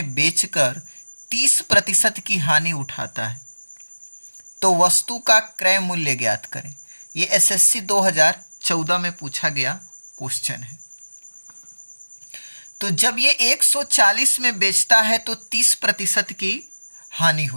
बेचकर 30% की हानि उठाता है, तो वस्तु का क्रय मूल्य ज्ञात करें। ये एसएससी 2014 में पूछा गया क्वेश्चन है। तो जब ये 140 में बेचता है तो 30% की हानि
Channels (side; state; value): both; inverted; correlation -1.00